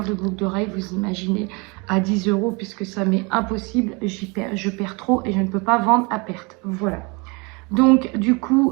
de boucles d'oreilles, vous imaginez, à 10 € puisque ça m'est impossible, je perds trop et je ne peux pas vendre à perte. Voilà. Donc du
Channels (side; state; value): left; quieter; 29.2 dB